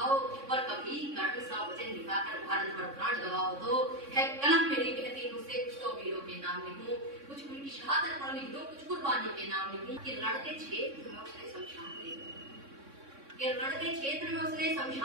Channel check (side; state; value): left; late; 3.6 ms